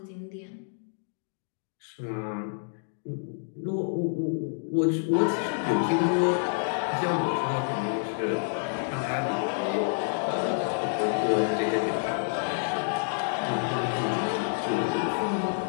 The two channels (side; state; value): right; silent; digital silence